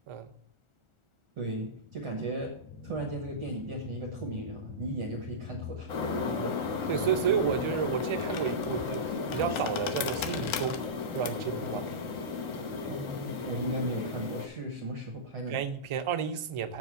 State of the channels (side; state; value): left; late; 1.4 ms